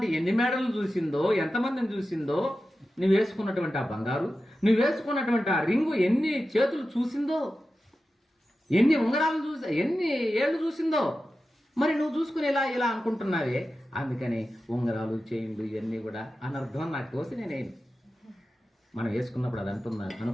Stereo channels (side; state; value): both; normal; correlation 0.93